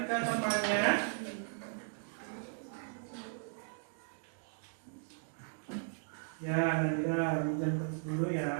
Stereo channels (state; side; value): silent; left; digital silence